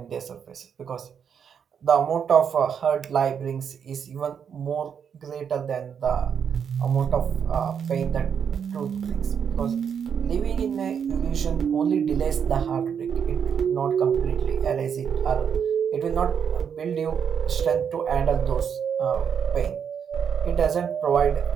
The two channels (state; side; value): quieter; left; 7.5 dB